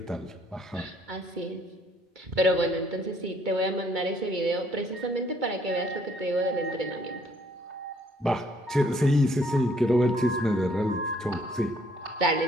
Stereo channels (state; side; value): normal; both; correlation 0.64